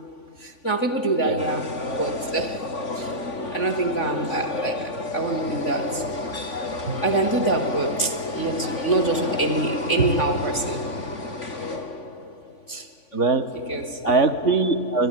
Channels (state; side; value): late; right; 3.5 ms